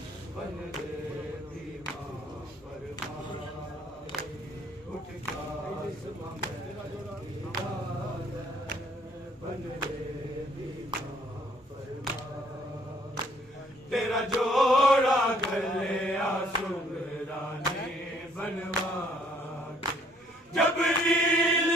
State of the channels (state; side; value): normal; both; correlation 0.63